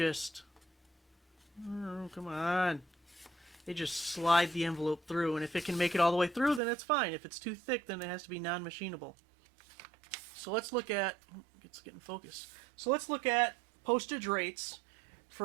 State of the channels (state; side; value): drops out; left; at 6.6 s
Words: oh, come on. They just slide the envelope through, and if it can make it all the way through, then it's fine. If it's too thick, then it has to be non-machinable. So let's look at, it's getting focused. So let's look at postage rates